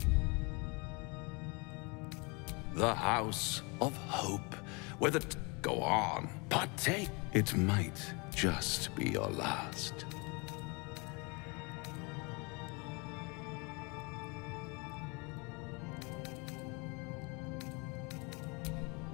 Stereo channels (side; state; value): right; quieter; 29.6 dB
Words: The House of Hope, where the... Go on, partake. It might just be your last.